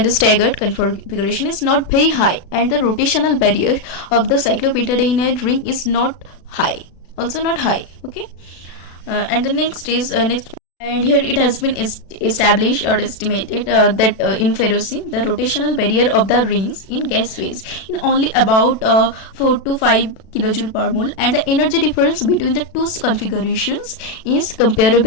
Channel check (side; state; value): right; late; 36 ms